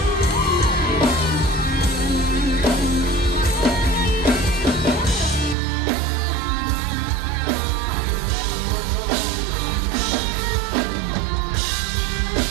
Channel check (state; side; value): drops out; left; at 5.6 s